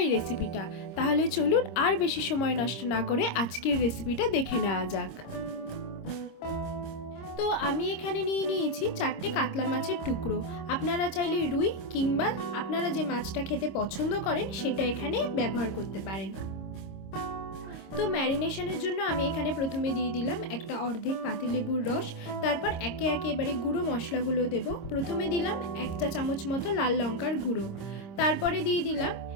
এই রেসিপিটা। তাহলে চলুন আর বেশি সময় নষ্ট না করে আজকের রেসিপিটা দেখে নেওয়া যাক। তো আমি এখানে নিয়ে নিয়েছি 4টে কাতলা মাছের টুকরো। আপনারা চাইলে রুই কিংবা আপনারা যে মাছটা খেতে পছন্দ করেন সেটা এখানে ব্যবহার করতে পারেন। তো ম্যারিনেশনের জন্য আমি এখানে প্রথমে দিয়ে দিলাম একটা অর্ধেক পাতিলেবুর রস। তারপর একে একে এবারে গুঁড়ো মশলাগুলো দেব। প্রথমে দিলাম 1 চা চামচ মতো লাল লঙ্কার গুঁড়ো, তারপরে দিয়ে দিলাম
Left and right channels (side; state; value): right; late; 26 ms